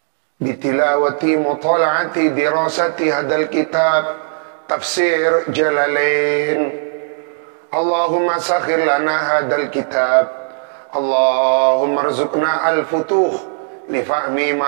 bitilawati mutala'ati dirasati hadal kitab tafsir Jalalain. Allahumma sakhir lana hadal kitab. Allahumma rzuqna al-futuh li fahmi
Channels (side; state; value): left; silent; 68 dB below the other